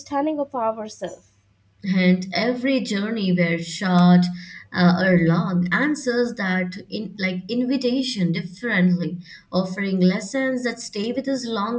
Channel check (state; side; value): identical; both; correlation 1.00